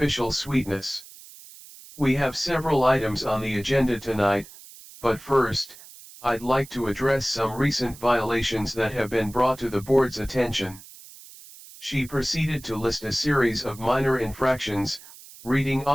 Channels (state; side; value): noise; right; hiss, 19 dB below the sound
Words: sweetness. "We have several items on the agenda tonight, but first, I'd like to address some recent violations that have been brought to the board's attention." She proceeded to list a series of minor infractions, reading